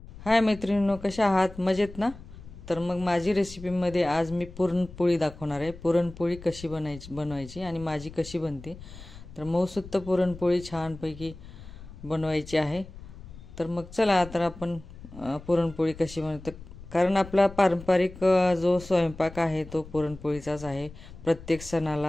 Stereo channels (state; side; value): noise; left; rumble, 16 dB below the sound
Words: हाय मैत्रिणींनो, कशा आहात? मजेत ना? तर मग माझी रेसिपीमध्ये आज मी पुरणपोळी दाखवणार आहे. पुरणपोळी कशी बनवायची आणि माझी कशी बनते. तर मऊसुत पुरणपोळी छानपैकी बनवायची आहे. तर मग चला तर आपण पुरणपोळी कशी बनवतो. कारण आपला पारंपरिक जो स्वयंपाक आहे तो पुरणपोळीचाच आहे. प्रत्येक